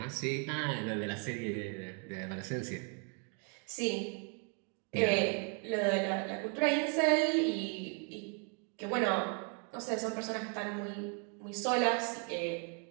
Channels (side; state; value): left; quieter; 38.4 dB